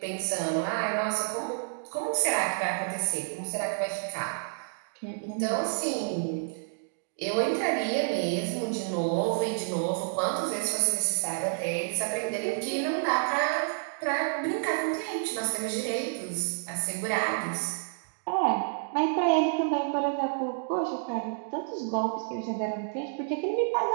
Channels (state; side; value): silent; left; digital silence